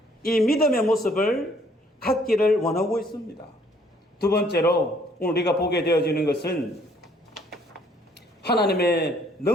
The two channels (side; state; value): both; normal; correlation 0.63